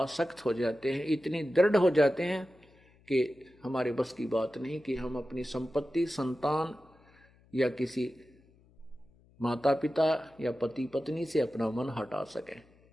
हो जाते हैं, इतनी दृढ़ हो जाते हैं कि हमारे बस की बात नहीं कि हम अपनी संपत्ति, संतान या किसी माता पिता या पति पत्नी से अपना मन हटा सकें।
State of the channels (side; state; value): left; noise; hum, 30 dB below the sound